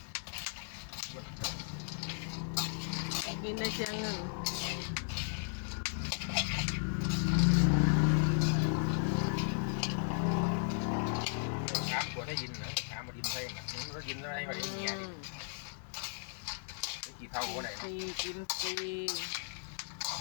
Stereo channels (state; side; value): silent; right; digital silence